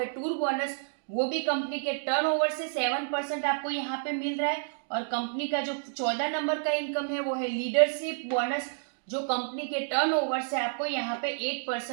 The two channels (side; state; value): left; silent; digital silence